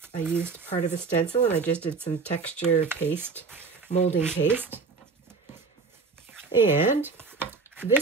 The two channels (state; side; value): quieter; left; 4.6 dB